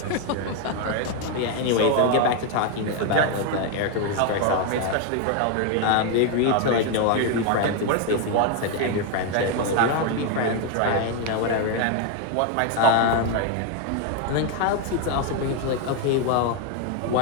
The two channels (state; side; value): different; both; correlation 0.01